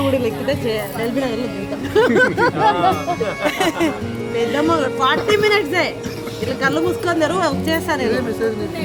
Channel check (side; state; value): both; identical; correlation 1.00